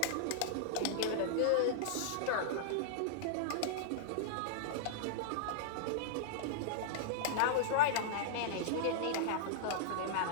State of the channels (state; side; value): different; both; correlation -0.02